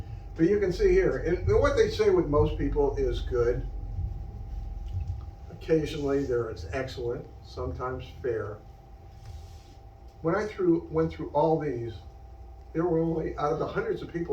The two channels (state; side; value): identical; both; correlation 1.00